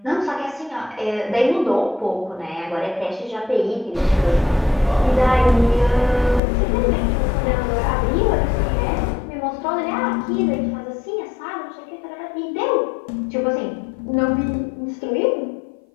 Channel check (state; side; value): drops out; right; at 6.4 s